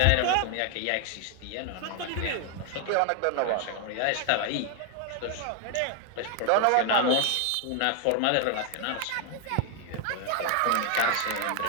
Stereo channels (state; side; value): different; both; correlation 0.00